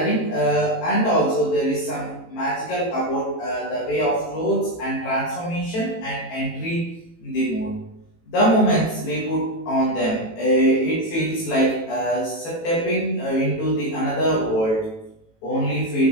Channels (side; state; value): right; late; 18 ms